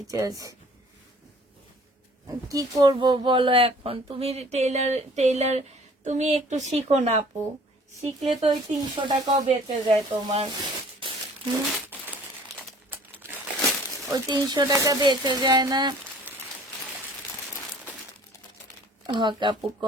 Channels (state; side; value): normal; both; correlation 0.52